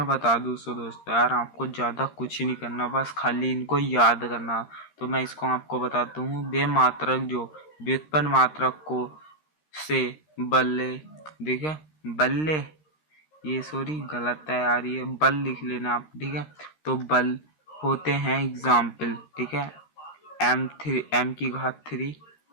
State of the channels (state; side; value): late; right; 13 ms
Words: बता दूँ सो दोस्तों यार, आपको ज़्यादा कुछ नहीं करना, बस खाली इनको याद करना। तो मैं इसको आपको बताता हूँ। बेमात्रक जो व्युत्पन्न मात्रक को से बल्ले, देखिए बल्ले, ये सॉरी गलत है यार, ये बल लिख लेना आप, ठीक है। तो बल होते हैं एग्जाम्पल, ठीक है। m की घात 3,